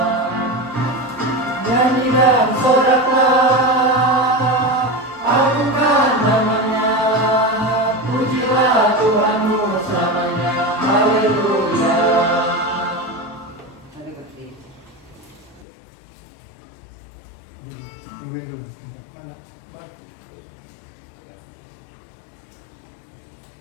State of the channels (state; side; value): drops out; right; at 15.7 s